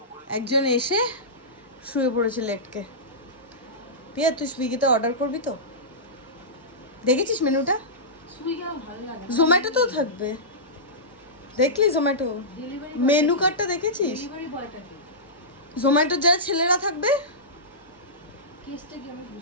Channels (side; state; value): both; normal; correlation -0.16